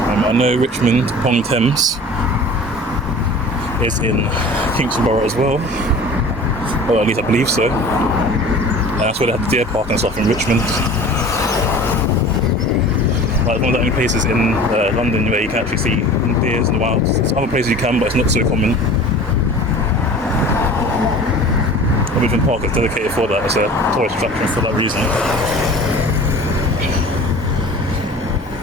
I know Richmond upon Thames is in Kingston Borough as well. Or at least I believe so. And that's where they have the deer park and stuff in Richmond. Like one of the only places in London where you can actually see deers in the wild. There's other places you can, but it's not so common. Richmond Park is dedicated for that. It's a tourist attraction for that reason.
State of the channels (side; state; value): both; normal; correlation 0.41